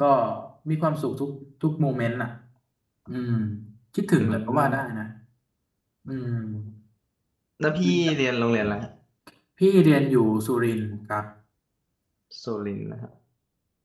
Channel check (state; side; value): identical; both; correlation 1.00